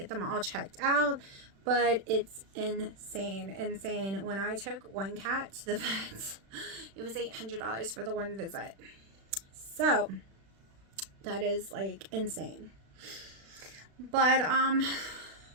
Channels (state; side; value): late; left; 36 ms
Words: them all checked out. But it's insane. When I took one cat to the vet, it was $800 for the one visit. So that is like insane. But